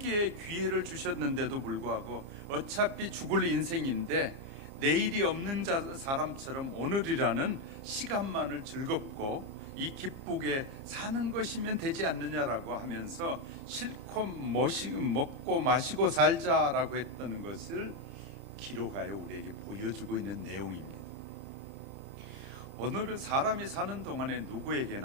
기회를 주셨는데도 불구하고 어차피 죽을 인생인데 내일이 없는 사람처럼 오늘이라는 시간만을 즐겁고 이 기쁘게 사는 것이면 되지 않느냐라고 하면서 실컷 먹고 마시고 살자라고 했던 것을 기록하여 우리에게 보여주고 있는 내용입니다. 오늘은 사람이 사는 동안에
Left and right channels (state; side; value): late; left; 29 ms